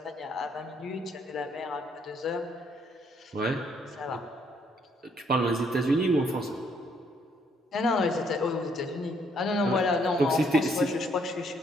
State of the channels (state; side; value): normal; both; correlation 0.69